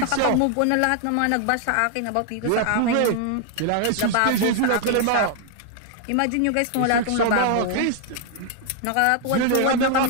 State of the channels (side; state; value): both; different; correlation 0.00